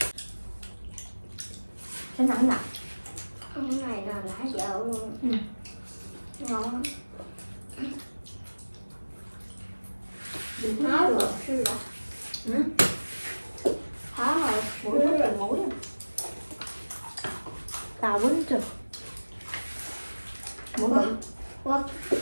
Cái nặng nặng. Cái này là lá dậu luôn. Ngon. Nói rồi sư là. Hả rồi, Mũi rất là mũi. Tao quýnh chưa? Mũi bự.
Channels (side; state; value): both; inverted; correlation -1.00